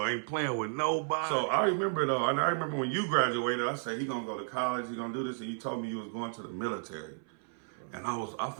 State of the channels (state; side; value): silent; left; 56 dB below the other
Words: Ain't playing with nobody. So I remember though, and I remember when you graduated, I said he gonna go to college, he gonna do this, and you told me you was going to the military. And I